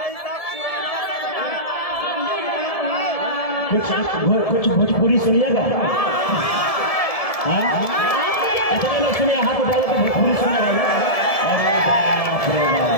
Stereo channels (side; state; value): right; late; 1.7 ms